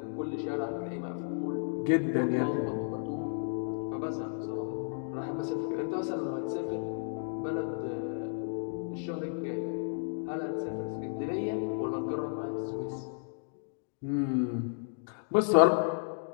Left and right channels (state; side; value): silent; right; digital silence